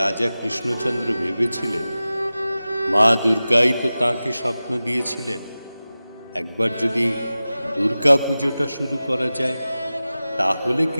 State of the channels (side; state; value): both; inverted; correlation -0.96